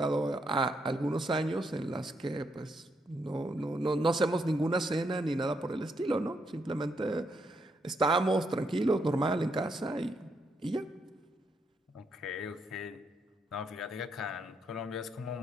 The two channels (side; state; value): both; normal; correlation 0.78